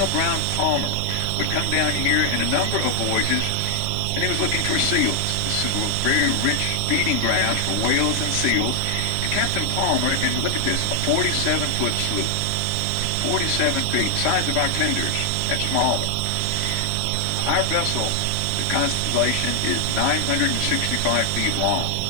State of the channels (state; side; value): different; both; correlation 0.00